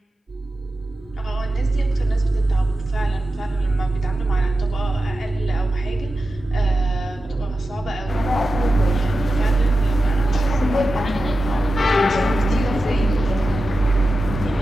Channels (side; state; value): both; normal; correlation 0.92